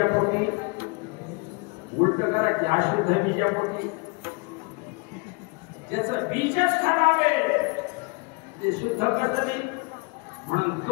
उलट करा की अशुद्ध बीजापोटी. ज्याचं बीजच खराब आहे ते शुद्ध कसं नाही. म्हणून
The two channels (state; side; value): quieter; right; 29.5 dB